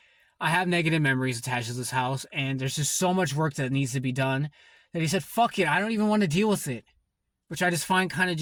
I have negative memories attached to this house, and there's just so much work that needs to be done, that he said, fuck it, I don't even want to deal with it. Which I just find kind of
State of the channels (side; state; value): both; identical; correlation 1.00